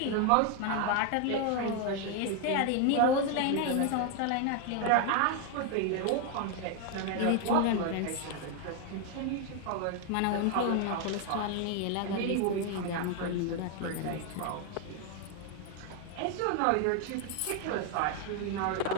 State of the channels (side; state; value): both; different; correlation 0.01